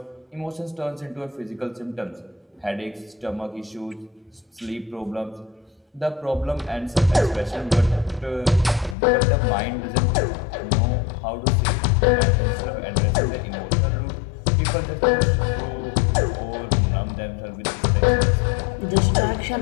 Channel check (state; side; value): drops out; right; at 9.0 s